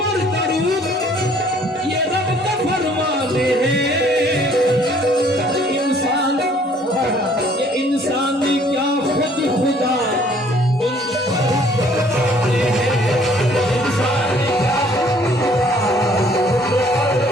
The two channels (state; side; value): normal; both; correlation 0.59